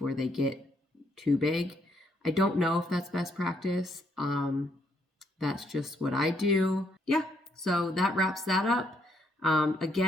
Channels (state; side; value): normal; both; correlation 0.72